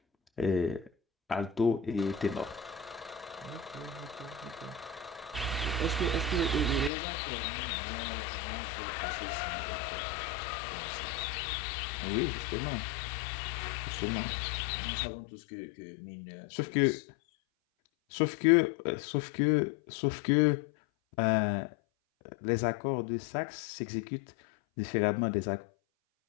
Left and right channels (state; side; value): drops out; right; at 6.9 s